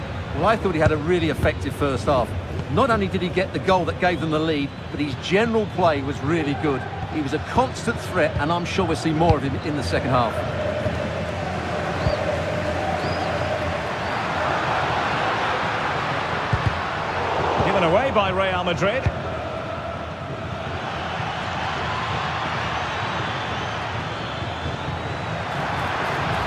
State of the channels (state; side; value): identical; both; correlation 1.00